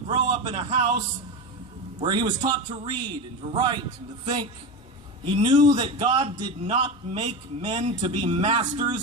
up in a house where he was taught to read and to write and to think. He knew that God did not make men to be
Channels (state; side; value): normal; both; correlation 0.21